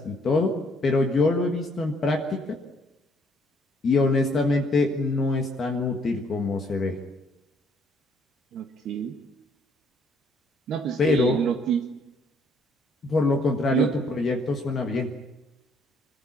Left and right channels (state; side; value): normal; both; correlation 0.65